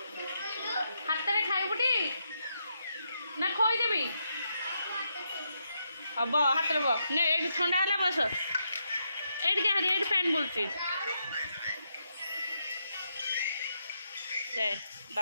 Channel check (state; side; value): inverted; both; correlation -0.81